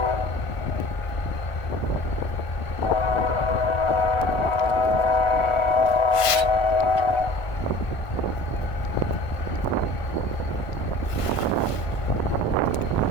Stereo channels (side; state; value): right; late; 1.5 ms